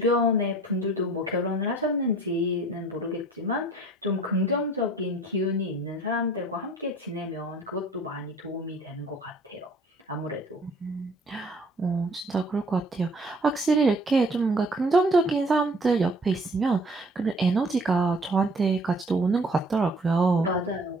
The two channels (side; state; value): both; normal; correlation 0.53